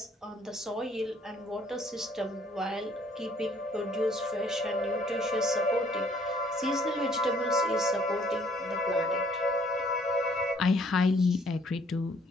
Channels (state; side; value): normal; both; correlation 0.62